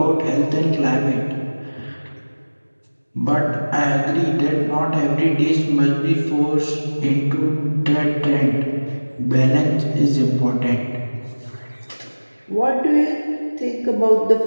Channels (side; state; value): both; inverted; correlation -1.00